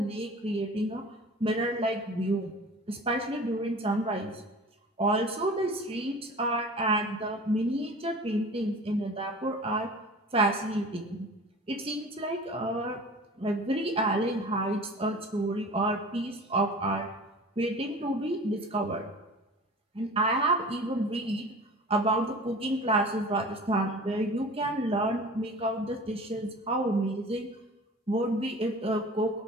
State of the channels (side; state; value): both; normal; correlation 0.40